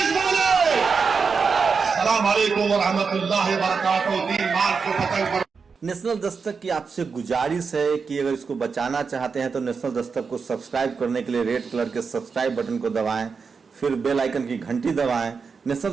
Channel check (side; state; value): left; quieter; 5.3 dB